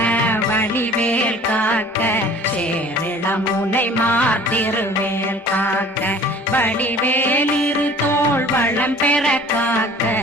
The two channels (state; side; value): normal; both; correlation 0.49